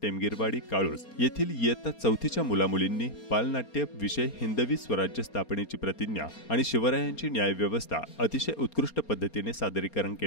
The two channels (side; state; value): right; late; 4.3 ms